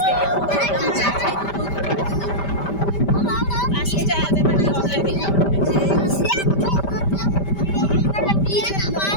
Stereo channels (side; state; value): right; late; 5.1 ms